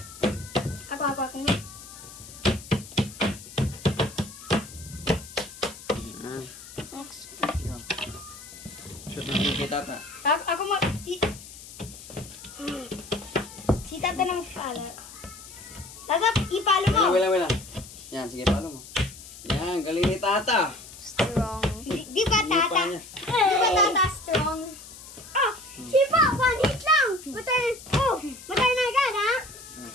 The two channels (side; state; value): left; noise; hiss, 16 dB below the sound